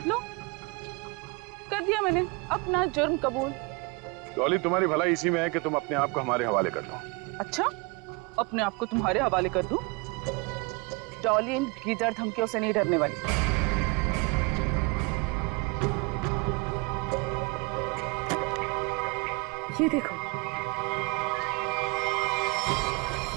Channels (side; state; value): left; quieter; 28.1 dB